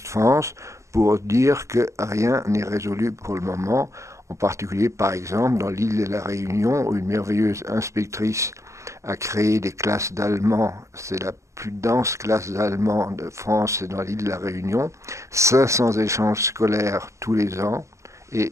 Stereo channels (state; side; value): late; left; 0.14 ms